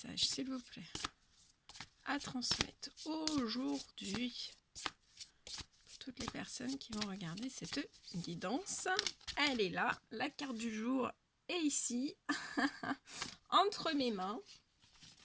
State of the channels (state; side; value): identical; both; correlation 1.00